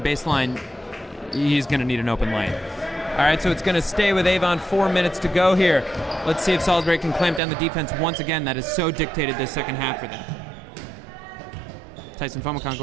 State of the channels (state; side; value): drops out; left; at 7.4 s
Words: baseline, he's going to need an open lane. All right, so it's going to stay with Avon. 4 minutes to go here. Let's see if Salisbury can clamp down the defense once again. That has so dictated this second half for them. Tyson Fomicon